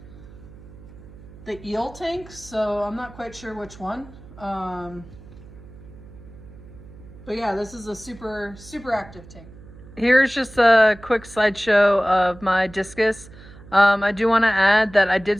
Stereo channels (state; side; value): noise; right; hum, 19 dB below the sound